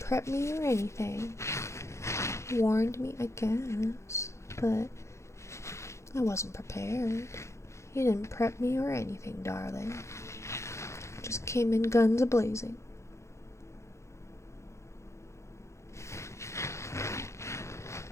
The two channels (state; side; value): late; right; 0.14 ms